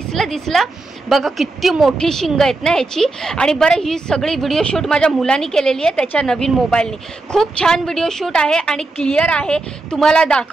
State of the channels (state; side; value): quieter; left; 3.2 dB